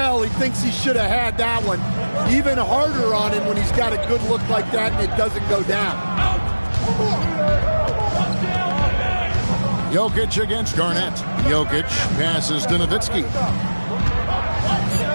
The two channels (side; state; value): both; inverted; correlation -1.00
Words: he thinks he should have had that one. Even harder on him when he's got a good look like that and it doesn't go down. Jokic against Garnett. Jokic passes to Nowitzki.